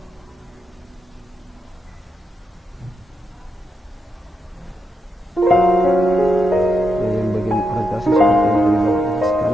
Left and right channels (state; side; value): normal; both; correlation 0.84